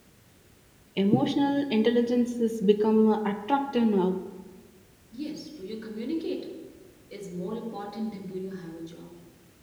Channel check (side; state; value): both; identical; correlation 1.00